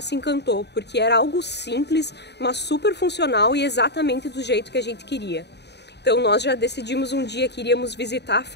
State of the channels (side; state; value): right; late; 0.49 ms